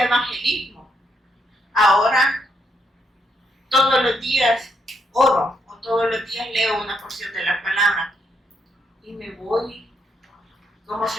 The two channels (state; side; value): normal; both; correlation 0.76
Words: evangelismo. Ahora todos los días oro o todos los días leo una porción de la palabra y me voy, como